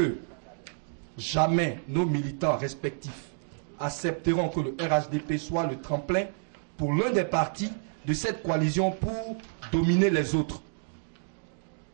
jamais nos militants respectifs accepteront que le RHDP soit le tremplin pour l'un des partis de cette coalition pour dominer les autres.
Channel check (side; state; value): left; silent; digital silence